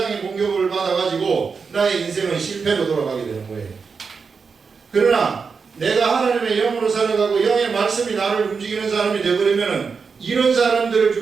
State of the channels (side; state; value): left; quieter; 5.3 dB